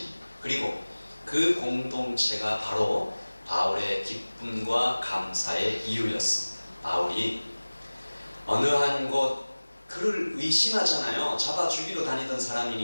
그리고 그 공동체가 바로 바울의 기쁨과 감사의 이유였습니다. 바울이 어느 한 곳 그를 의심하잖아요. 잡아 죽이러 다니던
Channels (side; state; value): both; inverted; correlation -1.00